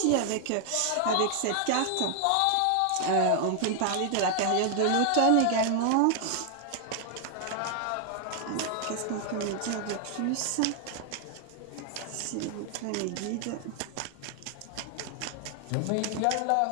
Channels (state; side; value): different; both; correlation 0.00